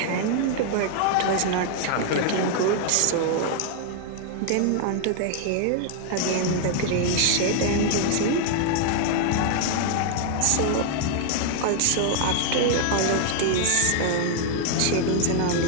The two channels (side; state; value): both; different; correlation 0.00